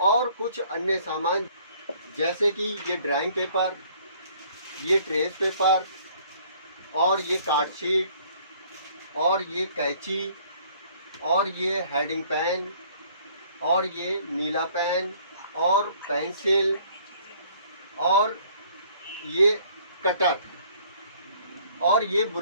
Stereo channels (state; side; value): inverted; both; correlation -0.58